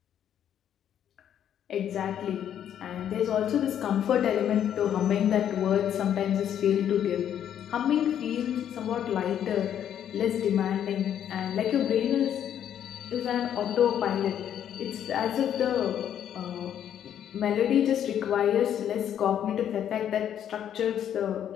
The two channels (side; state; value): right; quieter; 9.8 dB